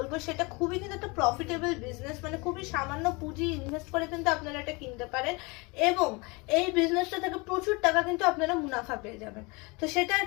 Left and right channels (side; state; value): right; quieter; 27.3 dB